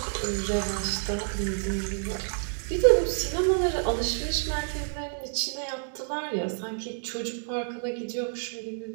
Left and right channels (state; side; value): silent; left; 59 dB below the other